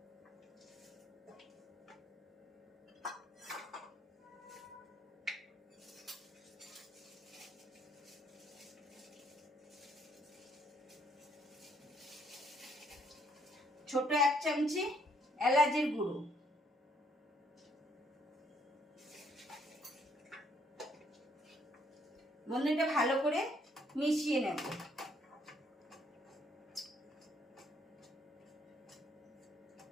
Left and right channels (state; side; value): normal; both; correlation 0.68